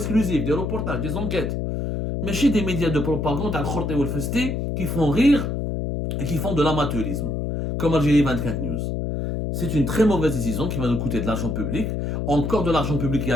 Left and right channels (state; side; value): noise; left; hum, 2 dB below the sound